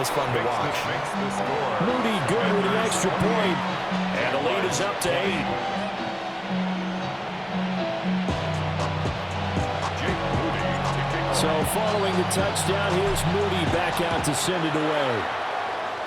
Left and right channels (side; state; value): both; identical; correlation 1.00